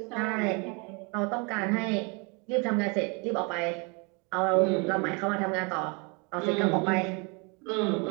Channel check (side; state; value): left; quieter; 31.9 dB